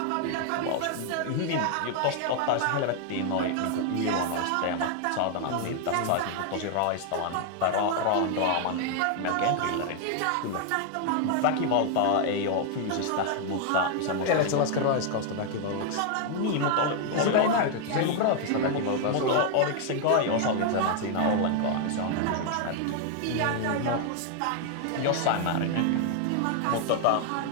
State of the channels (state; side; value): different; both; correlation 0.00